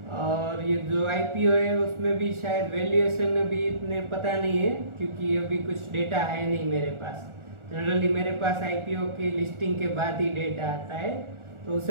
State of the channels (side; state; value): left; late; 1.4 ms